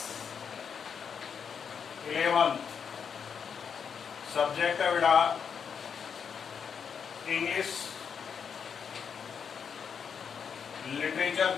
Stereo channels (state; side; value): quieter; right; 6.8 dB